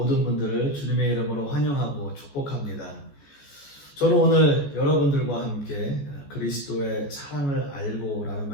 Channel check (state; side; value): late; right; 14 ms